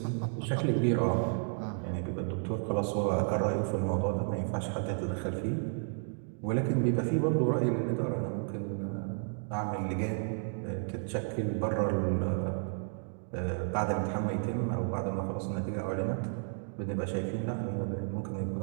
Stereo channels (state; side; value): silent; left; 56 dB below the other